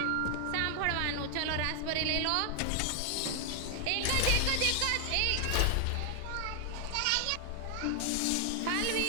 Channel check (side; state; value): both; different; correlation 0.00